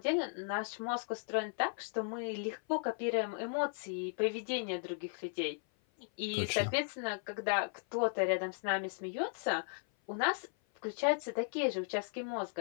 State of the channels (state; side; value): silent; right; 54 dB below the other